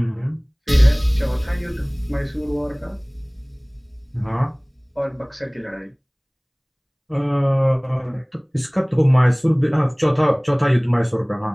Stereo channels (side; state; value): both; identical; correlation 1.00